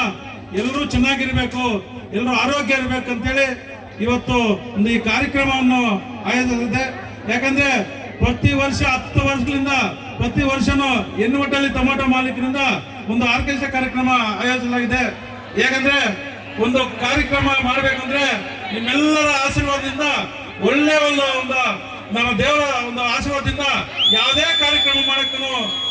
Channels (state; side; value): identical; both; correlation 1.00